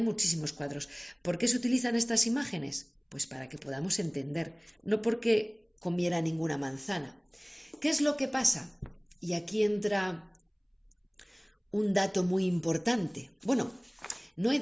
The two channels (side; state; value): both; identical; correlation 1.00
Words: muchísimos cuadros. ¿Por qué se utilizan estas imágenes? Pues para que podamos entender, no porque comiera ninguna manzana. ¿Qué es lo que pasa? Y aquí entra un dato muy importante. Bueno, no he